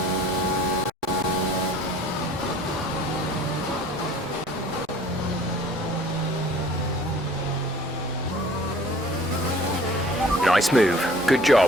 Nice move. Good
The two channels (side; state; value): both; normal; correlation 0.51